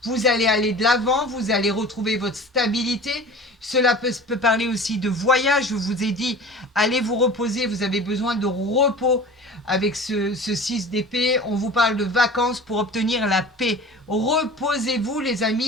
Vous allez aller de l'avant, vous allez retrouver votre stabilité. Cela peut parler aussi de voyage. Je vous ai dit, allez vous reposer, vous avez besoin de repos avec ce 6 d'épée. On vous parle de vacances pour obtenir la paix. Reposez-vous, les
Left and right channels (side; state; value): both; normal; correlation 0.39